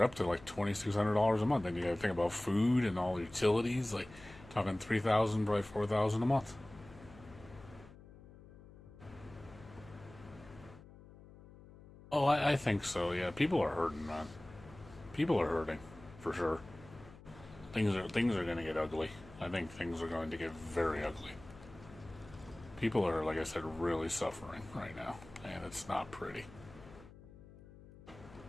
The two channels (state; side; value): noise; left; hum, 20 dB below the sound